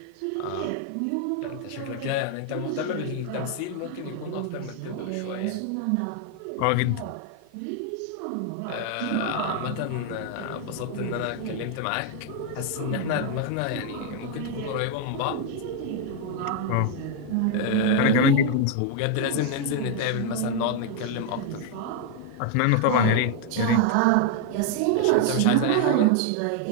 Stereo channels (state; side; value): different; both; correlation 0.00